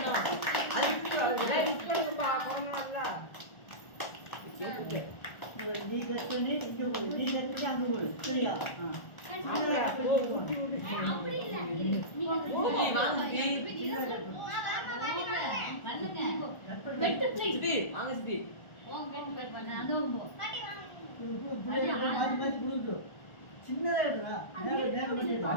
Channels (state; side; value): late; right; 1.4 ms